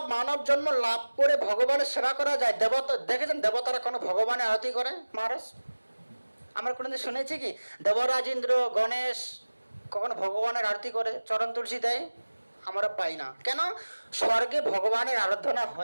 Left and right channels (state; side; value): inverted; both; correlation -1.00